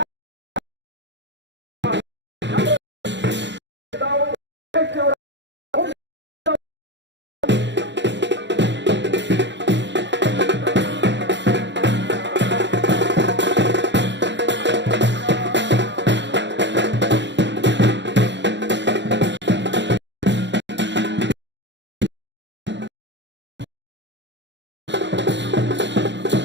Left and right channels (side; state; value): left; late; 0.52 ms